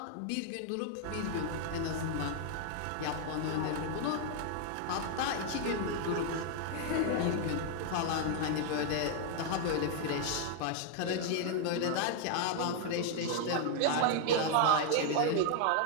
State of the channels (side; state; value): both; different; correlation 0.00